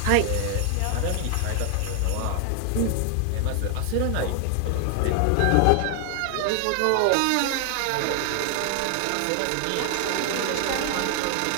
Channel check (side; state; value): both; different; correlation 0.00